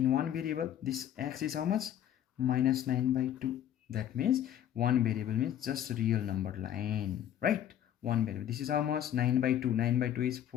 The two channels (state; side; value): quieter; right; 10.8 dB